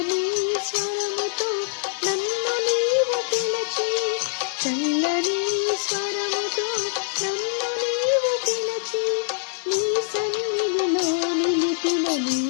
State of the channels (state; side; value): silent; right; digital silence